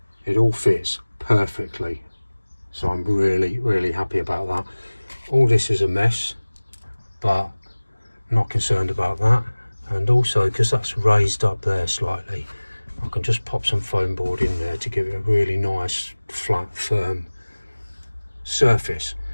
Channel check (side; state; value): both; inverted; correlation -1.00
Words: it all fits perfectly. So I'm really, really happy about that. All this is a mess, but not concerned about that. And also, because that's raised up there slightly, I can just pop some foam board in there to give it a really nice, flat, firm surface.